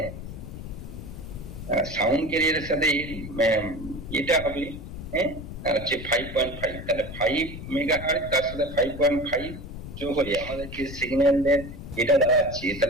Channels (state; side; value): noise; left; rumble, 11 dB below the sound